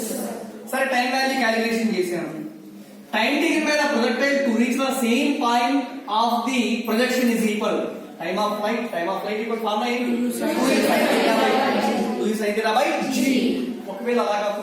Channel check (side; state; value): both; identical; correlation 1.00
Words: సరే, time value calculation చేశాను. Time taken by the projectile to reach the same point of the projection is equal time of flight equal formula ఏంటి? 2 sin theta by g. ఒకవేళ అలా